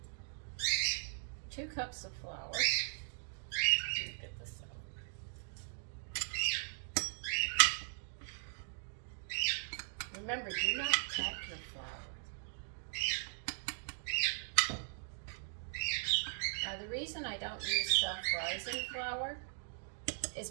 2 cups of flour. Let me get this out. Remember, do not crack your flour. Now, the reason I don't use self-rising flour is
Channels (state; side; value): silent; left; digital silence